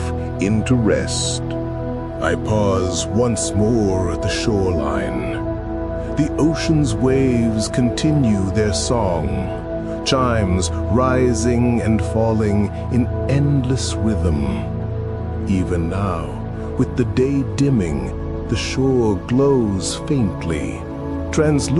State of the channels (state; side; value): identical; both; correlation 1.00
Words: into rest. I pause once more at the shoreline. The ocean's waves continue their song, chimes rising and falling in endless rhythm. Even now, with the day dimming, the shore glows faintly,